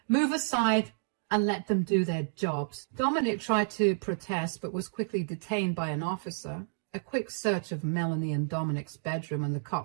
Move aside and let them do their jobs. Dominic tried to protest but was quickly detained by an officer. A quick search of Melanie and Dominic's bedroom, and the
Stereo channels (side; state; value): left; silent; digital silence